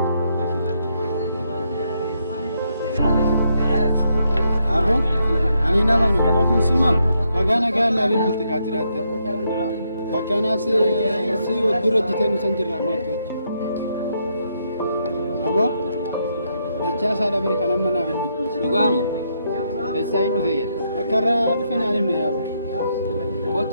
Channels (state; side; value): inverted; both; correlation -0.77